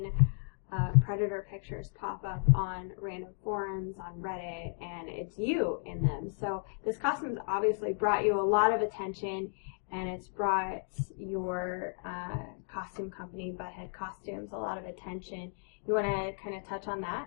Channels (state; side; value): silent; right; 55 dB below the other